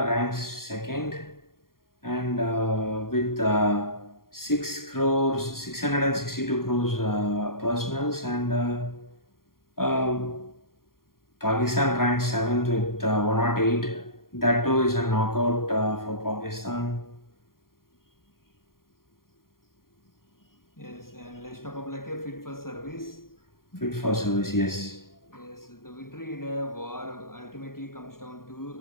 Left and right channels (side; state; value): right; late; 0.92 ms